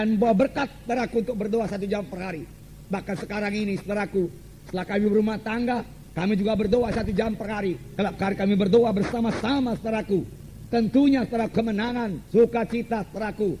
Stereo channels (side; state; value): both; identical; correlation 1.00